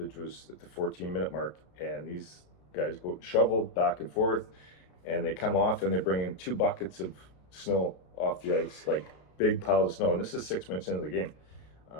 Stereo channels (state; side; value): late; right; 33 ms